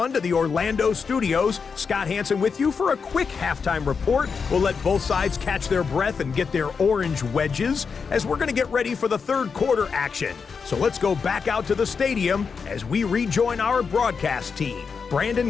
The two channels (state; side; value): quieter; right; 5.6 dB